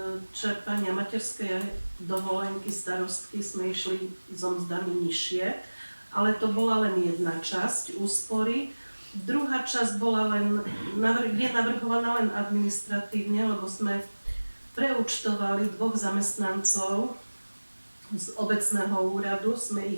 čerpania materskej dovolenky starostky sme išli so mzdami nižšie, ale to bola len jedna časť úspory. Druhá časť bola je navrhovaná len administratívne, lebo sme preúčtovali 2 zamestnancov z obecného úradu, sme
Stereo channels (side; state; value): both; inverted; correlation -1.00